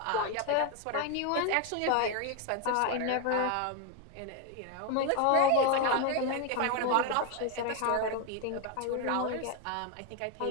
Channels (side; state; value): both; different; correlation 0.01